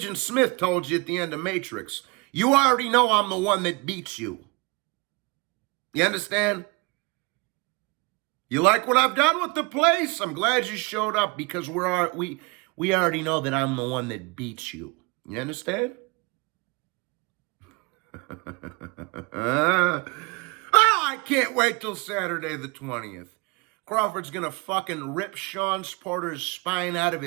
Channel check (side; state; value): left; quieter; 27.2 dB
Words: Smith told you at the end of Matrix, you already know I'm the one that beats you. You understand? You like what I've done with the place? I'm glad you showed up because we already know that I'm the one that beats you. You understand? Oh, I can't wait till Saturday the 20th. Crawford's gonna fucking rip Sean Porter's spine out of